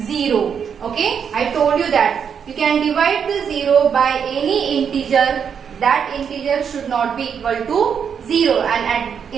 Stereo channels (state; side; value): quieter; left; 7.3 dB